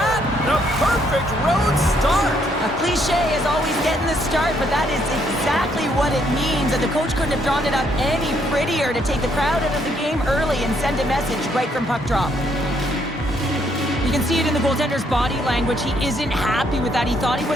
the perfect road start. A cliche is always getting the start, but that is exactly what it means. And the coach couldn't have drawn it up any prettier to take the crowd out of the game early and send a message right from puck drop. You can see it in the goaltender's body language. He isn't happy with that. He thought he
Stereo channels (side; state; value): both; normal; correlation 0.71